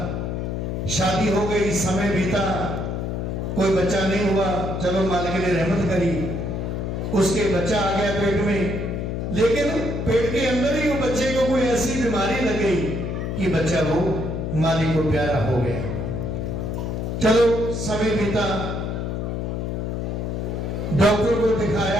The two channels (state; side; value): noise; left; hum, 3 dB below the sound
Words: शादी हो गई, समय बीता, कोई बच्चा नहीं हुआ, चलो मालिक ने रहमत करी, उसके बच्चा आ गया पेट में। लेकिन पेट के अंदर ही वो बच्चे को कोई ऐसी बीमारी लग गई कि बच्चा वो मालिक को प्यारा हो गया। चलो समय बीता, डॉक्टर को